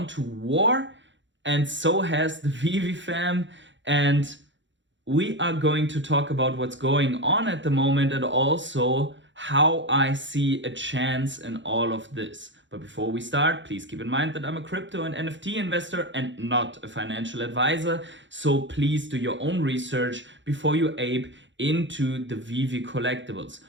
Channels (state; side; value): late; left; 0.54 ms